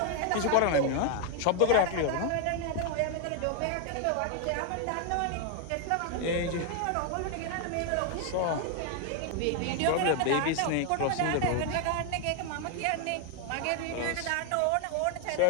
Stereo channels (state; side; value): different; both; correlation 0.00